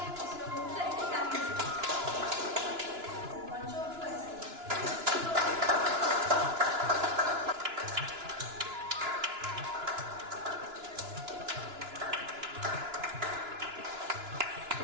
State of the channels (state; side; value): late; left; 2.9 ms